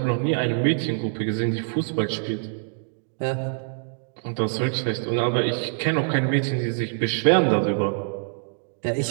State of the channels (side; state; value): left; silent; digital silence